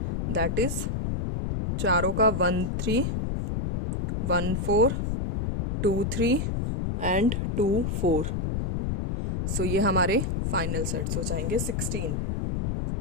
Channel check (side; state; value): left; noise; rumble, 1 dB below the sound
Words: दैट इज चारों का 1 3 1 4 2 3 एंड 2 4। सो ये हमारे फाइनल सेट्स हो जाएंगे 16।